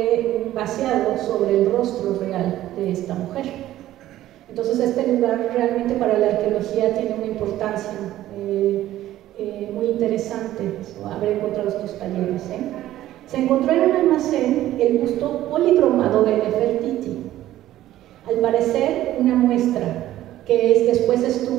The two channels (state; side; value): quieter; left; 13.9 dB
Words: vaciado sobre el rostro real de esta mujer. Entonces este lugar realmente para la arqueología tiene una importancia muy interesante, haber encontrado estos talleres. Se encontró en un almacén el busto policromado de Nefertiti. Al parecer que después